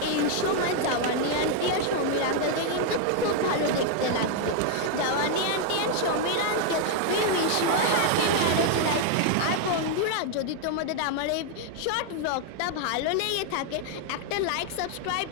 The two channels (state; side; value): different; both; correlation 0.00